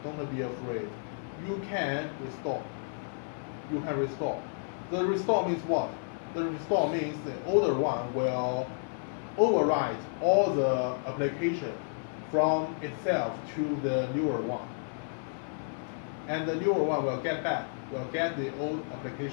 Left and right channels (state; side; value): silent; right; 57 dB below the other